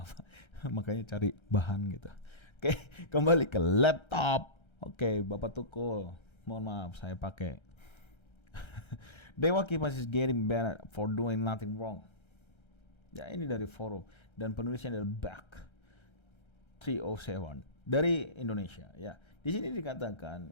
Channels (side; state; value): right; late; 1.3 ms